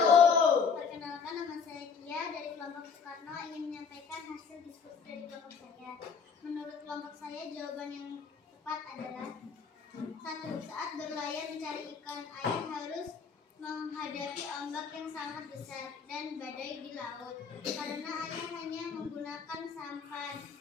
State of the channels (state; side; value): quieter; right; 5.9 dB